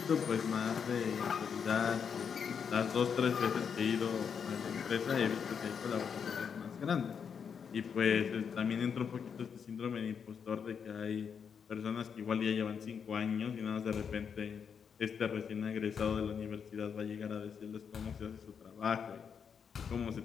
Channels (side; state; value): right; quieter; 6.9 dB